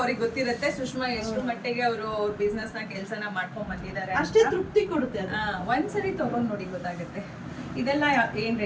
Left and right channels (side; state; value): both; identical; correlation 1.00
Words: ಗೊತ್ತಿರುತ್ತೆ. ಸುಷ್ಮಾ ಎಷ್ಟು ಮಟ್ಟಿಗೆ ಅವರು ಬಿಸ್ನೆಸ್ನ ಕೆಲಸನ ಮಾಡ್ಕೊಂಡ್ ಬಂದಿದ್ದಾರೆ ಅಷ್ಟೇ ತೃಪ್ತಿ ಕೊಡುತ್ತೆ ಅದು. ಒಂದ್ಸರಿ ತೊಗೊಂಡು ನೋಡಿ ಗೊತ್ತಾಗುತ್ತೆ. ಇದೆಲ್ಲ ಏನು